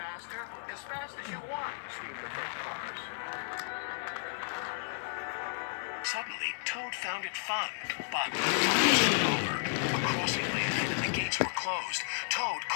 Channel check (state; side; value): silent; right; digital silence